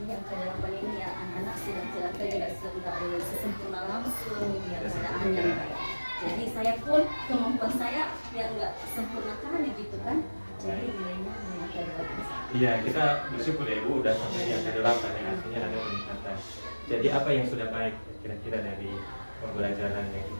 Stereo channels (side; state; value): both; inverted; correlation -1.00